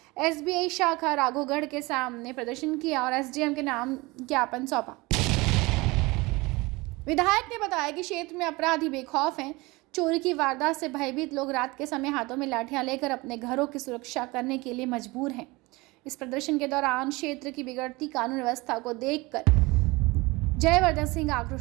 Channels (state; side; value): quieter; left; 23.2 dB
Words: एसबीआई शाखा राघवगढ़ के सामने प्रदर्शन किया और एसडीएम के नाम ज्ञापन सौंपा। विधायक ने बताया कि क्षेत्र में अपराधी बेखौफ हैं। चोरी की वारदात से भयभीत लोग रात के समय हाथों में लाठियां लेकर अपने घरों की सुरक्षा करने के लिए मजबूर हैं। इस प्रदर्शन के दौरान क्षेत्र की बिगड़ती कानून व्यवस्था को देखकर जयवर्धन सिंह